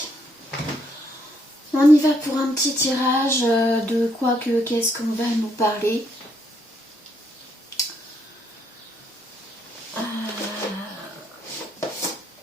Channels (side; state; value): both; normal; correlation 0.72